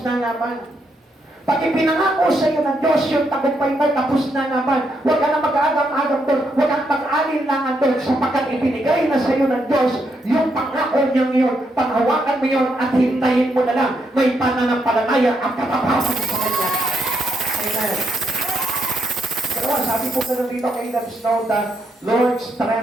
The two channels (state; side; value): normal; both; correlation 0.78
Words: na naman. Pag ipinangako sa iyo ng Diyos yung tagumpay mo, tapos na naman. Huwag ka na mag-agam-agam doon. Huwag kang mag-alinlangan doon sapagkat ibinigay na sa iyo ng Diyos yung pangako niyang yun. Panghawakan mo yun at hintayin mo na lang. May pananampalataya at katapasan sa Kanya. Amen. Dalawa, sabi po na dito kay Let us know that Lord's